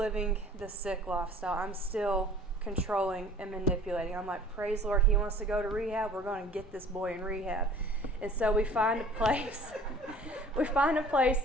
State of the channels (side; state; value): both; normal; correlation 0.48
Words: the sick lifestyle. I'm still controlling and manipulating. I'm like, praise the Lord, he wants to go to rehab. We're going to get this boy in rehab. And so we find a place. We find a place